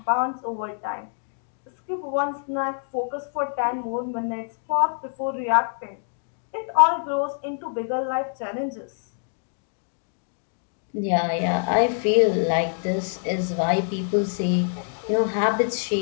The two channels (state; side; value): silent; right; 56 dB below the other